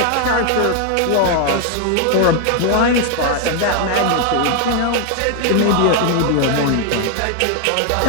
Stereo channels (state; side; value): different; both; correlation 0.01